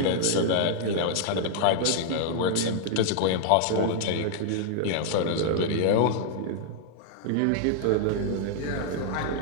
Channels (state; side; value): different; both; correlation -0.01